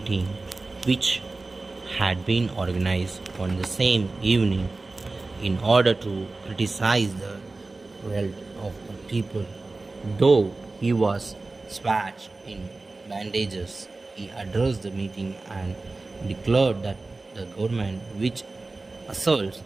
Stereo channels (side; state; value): left; quieter; 3.4 dB